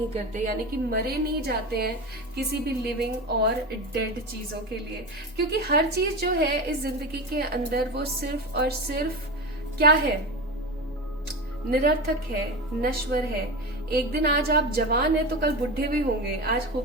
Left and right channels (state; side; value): normal; both; correlation 0.23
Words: करते, यानी कि मरे नहीं जाते हैं किसी भी लिविंग और डेड चीजों के लिए। क्योंकि हर चीज जो है इस जिंदगी के अंदर वो सिर्फ और सिर्फ क्या है? निरर्थक है, नश्वर है। एक दिन आज आप जवान है तो कल बुढ़े भी होंगे, आज